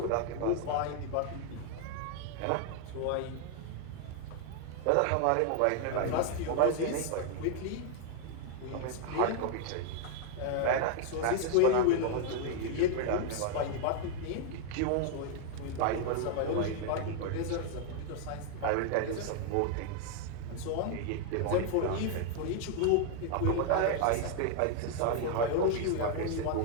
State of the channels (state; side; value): different; both; correlation 0.00